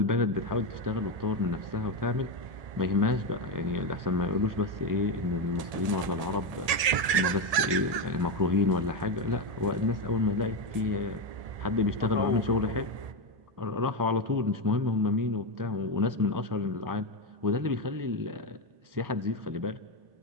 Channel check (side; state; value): left; late; 1.8 ms